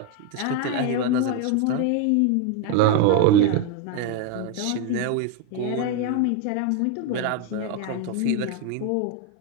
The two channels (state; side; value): different; both; correlation 0.01